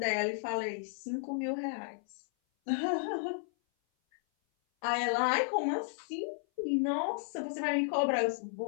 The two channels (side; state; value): right; silent; 55 dB below the other